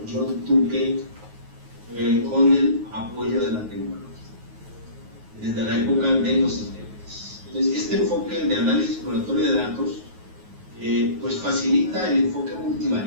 John Tukey con el apoyo de la tecnología desde la época de los 70. Entonces, este enfoque de análisis exploratorio de datos pues facilita el enfoque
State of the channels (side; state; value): left; late; 9.4 ms